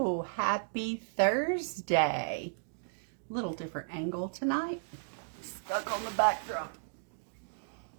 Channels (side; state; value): left; silent; digital silence